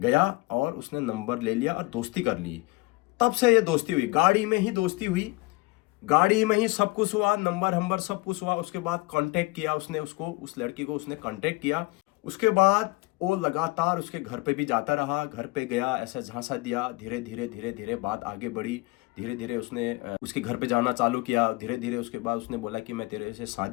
और उसने नंबर ले लिया और दोस्ती कर ली। तब से ये दोस्ती हुई, गाड़ी में ही दोस्ती हुई, गाड़ी में ही सब कुछ हुआ, नंबर सब कुछ हुआ। उसके बाद कांटेक्ट किया उसने, उसको, उस लड़की को उसने कांटेक्ट किया। उसके बाद वो लगातार उसके घर पे भी जाता रहा, घर पे गया, ऐसा झांसा दिया। धीरे धीरे धीरे धीरे बात आगे बढ़ी। धीरे धीरे उसने उसके घर पे जाना चालू किया। धीरे धीरे उसके बाद उसने बोला कि मैं तेरे से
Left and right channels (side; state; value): right; quieter; 22.8 dB